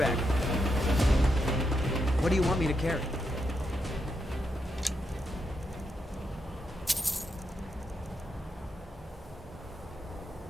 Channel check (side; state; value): both; normal; correlation 0.83